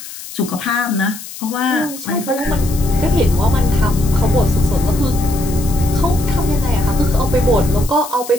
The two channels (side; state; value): left; noise; hiss, 13 dB below the sound